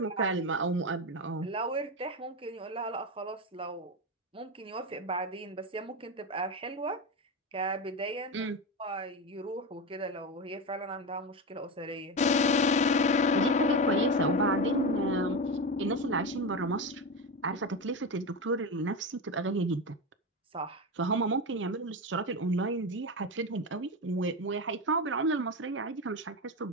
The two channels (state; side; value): normal; both; correlation 0.18